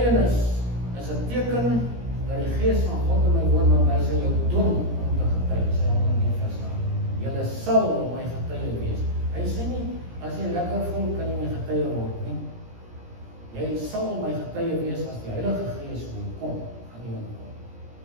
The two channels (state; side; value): late; left; 17 ms